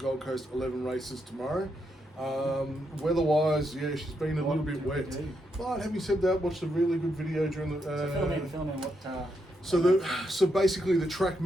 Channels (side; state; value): both; normal; correlation 0.81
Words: Coast 11 races tomorrow. Weather-wise, yeah, she's been a little bit wet. But having said that, watched a really good video during the... Fill in what... So basically the track